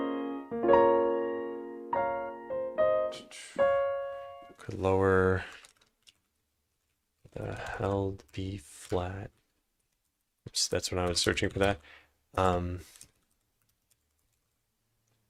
lower the held B flat. Oops, that's when I was searching for that.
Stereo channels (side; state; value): both; identical; correlation 1.00